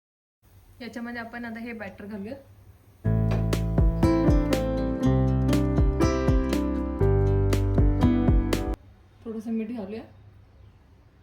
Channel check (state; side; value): identical; both; correlation 1.00